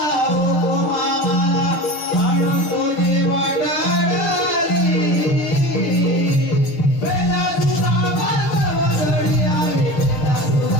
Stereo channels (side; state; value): right; late; 6.8 ms